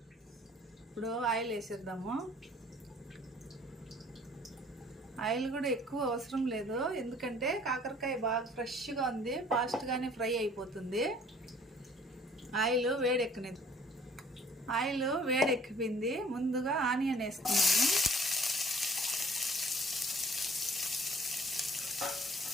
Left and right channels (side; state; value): both; normal; correlation 0.55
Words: ఇప్పుడు ఆయిల్ వేసేద్దాము. ఆయిల్ కూడా ఎక్కువ అవసరం లేదు, ఎందుకంటే కాకరకాయ బాగా ఫ్రెష్గా ఉంది, ఫాస్ట్గానే ఫ్రై అయిపోతుంది. ఆయిల్ వేడెక్కిపోయింది. ముందుగా ఆనియన్ వేసుకున్నాను.